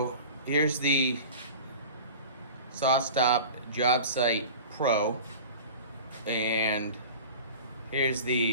here's the SawStop Jobsite Pro, and here's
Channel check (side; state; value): both; inverted; correlation -0.36